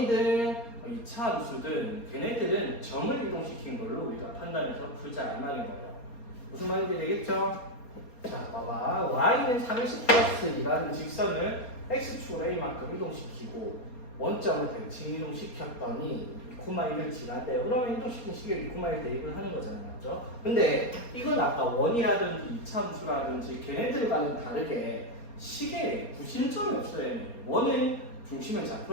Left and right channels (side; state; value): right; late; 4.3 ms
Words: 2차 함수든 걔네들은 점을 이동시킨 걸로 우리가 판단해서 풀자 이 말인 거예요. 무슨 말인지 되겠죠? 자, 봐봐. y는 3x 플러스 2라는 직선을 x축으로 a만큼 이동시키고 원점을 대칭 이동시켰더니 2,1을 지나대요. 그러면 이동시킨 시계에 2,1 대입을 하는 거잖아요. 맞죠? 근데 이건 아까 원이라든지 2차 함수라든지 걔네들과는 다르게 시계에 구심점이 없어요. 원은 중심의